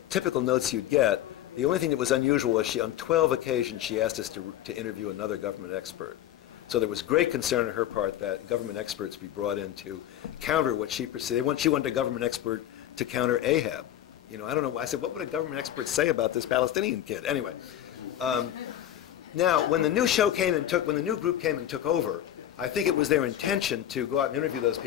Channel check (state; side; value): quieter; right; 11.9 dB